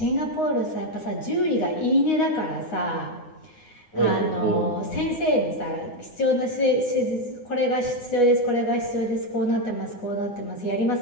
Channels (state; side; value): late; right; 9.6 ms